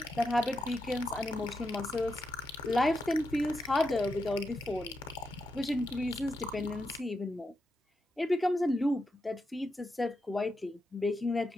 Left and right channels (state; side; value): normal; both; correlation 0.85